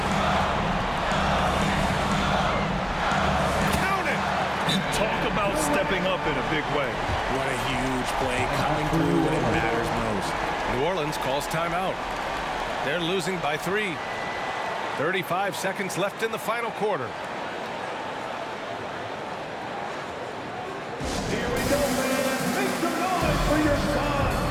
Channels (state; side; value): identical; both; correlation 1.00